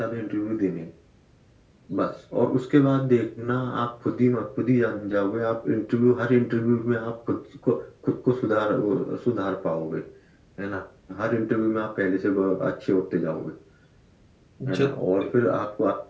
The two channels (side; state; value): both; identical; correlation 1.00